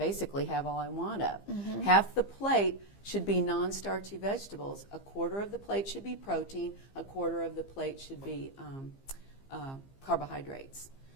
have all I want of. Half the plate should be non-starchy vegetables. A quarter of the plate should be protein. A quarter of the plate should be carbohydrates.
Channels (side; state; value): right; late; 15 ms